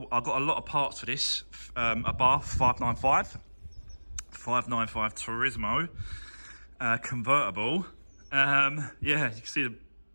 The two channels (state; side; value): inverted; both; correlation -1.00